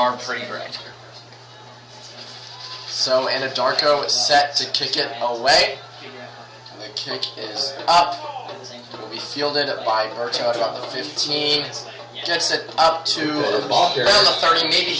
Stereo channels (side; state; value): both; identical; correlation 1.00